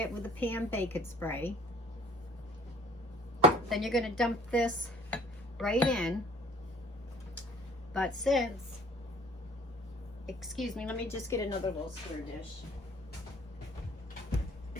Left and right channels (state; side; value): normal; both; correlation 0.53